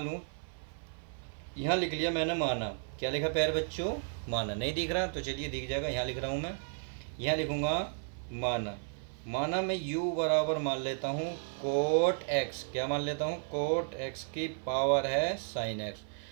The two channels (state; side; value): silent; left; 55 dB below the other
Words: लूँ, यहाँ लिख लिया मैंने माना। क्या लिखा प्यारे बच्चों? माना। नहीं दिख रहा तो चलिए दिख जाएगा, यहाँ लिख रहा हूँ मैं। यहाँ लिखूँगा माना। माना मैं u बराबर मान लेता हूँ कोट एक्स। क्या मान लेता हूँ? कोट एक्स की पावर है साइन एक्स।